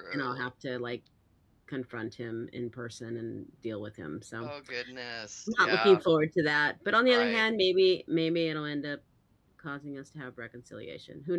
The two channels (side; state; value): both; identical; correlation 1.00